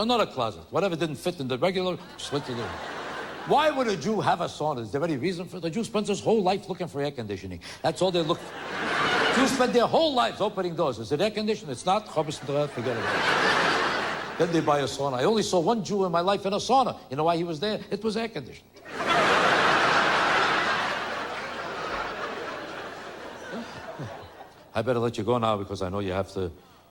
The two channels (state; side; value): identical; both; correlation 1.00